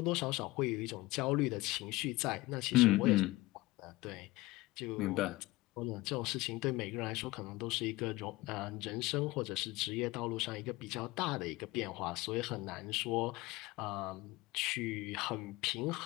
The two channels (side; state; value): right; quieter; 20.1 dB